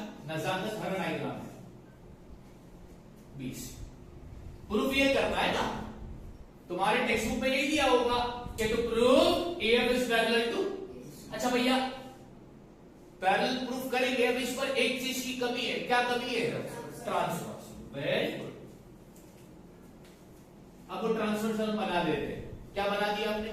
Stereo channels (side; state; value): both; identical; correlation 1.00